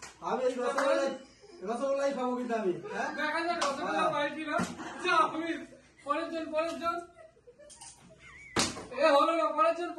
রসগোল্লাই খাবো কিন্তু আমি। দেখা যাক রসগোল্লা পাইছি না। পরের জন এ হলো না, পরের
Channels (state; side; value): identical; both; correlation 1.00